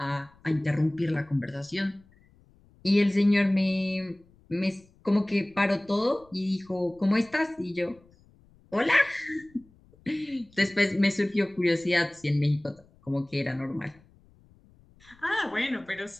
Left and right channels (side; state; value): left; noise; rumble, 29 dB below the sound